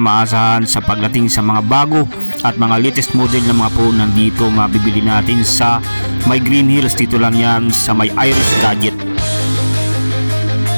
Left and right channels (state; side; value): inverted; both; correlation -1.00